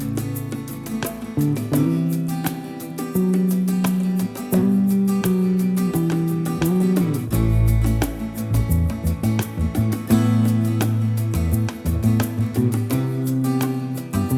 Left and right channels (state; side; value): identical; both; correlation 1.00